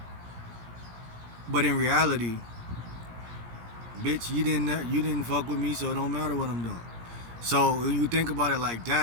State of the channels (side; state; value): left; late; 17 ms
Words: But in reality, bitch, you didn't fuck with me, so it don't matter what I'm doing. So when you think about it like